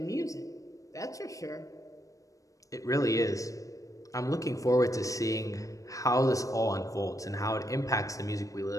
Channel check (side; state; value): right; late; 0.16 ms